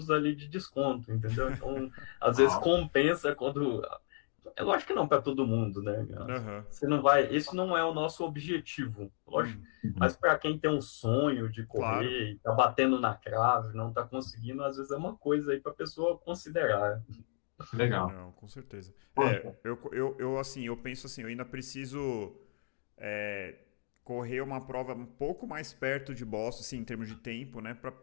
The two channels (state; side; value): silent; right; 55 dB below the other